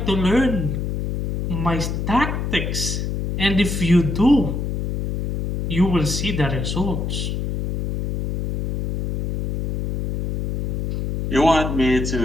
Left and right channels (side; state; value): left; noise; hum, 2 dB below the sound